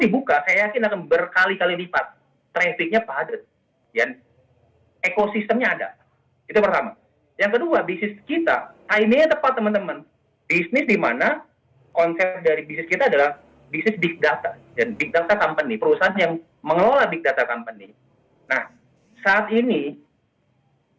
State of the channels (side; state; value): both; identical; correlation 1.00